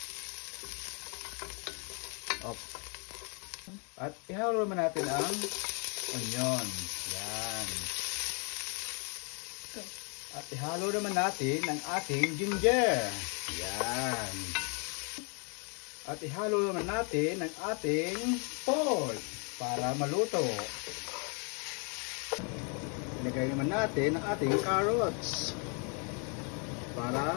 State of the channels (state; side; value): quieter; right; 37.6 dB